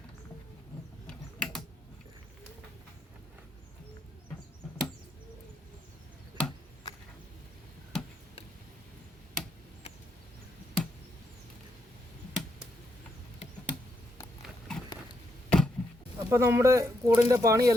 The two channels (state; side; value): normal; both; correlation 0.79